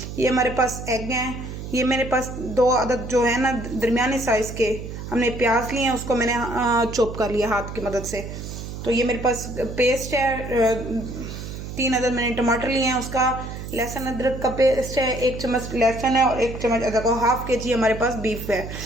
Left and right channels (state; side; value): noise; right; hum, 9 dB below the sound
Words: ये हमारे पास एग हैं। ये मेरे पास 2 अदद जो है ना दरमियाने साइज़ के हमने प्याज लिए हैं, उसको मैंने चॉप कर लिया हाथ की मदद से। तो ये मेरे पास पेस्ट है। 3 अदद मैंने टमाटर लिए हैं, उसका लहसुन अदरक का पेस्ट है। 1 चम्मच लहसुन है और 1 चम्मच अदरक और हाफ के जी हमारे पास बीफ है।